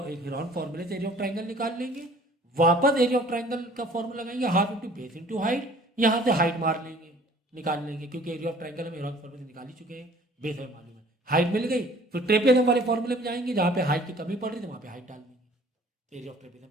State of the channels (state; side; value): normal; both; correlation 0.52